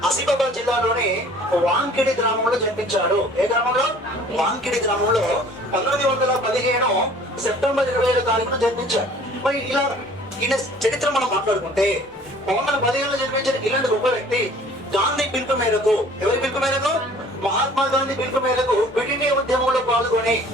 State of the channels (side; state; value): both; normal; correlation 0.51